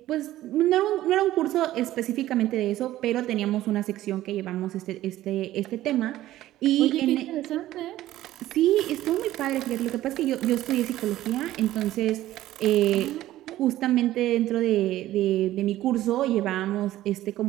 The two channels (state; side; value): quieter; left; 14.6 dB